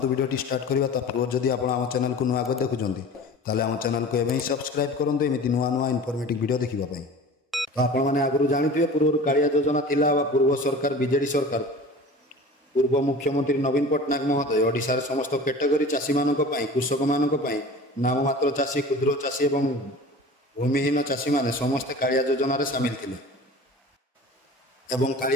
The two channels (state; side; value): normal; both; correlation 0.39